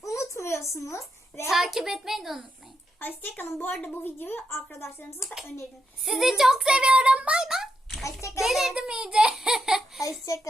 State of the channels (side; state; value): both; normal; correlation 0.84